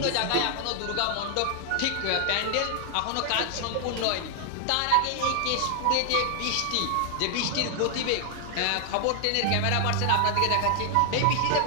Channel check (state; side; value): different; both; correlation 0.00